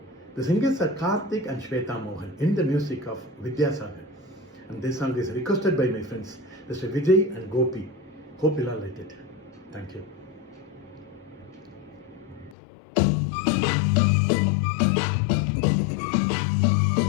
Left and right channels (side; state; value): right; drops out; at 12.6 s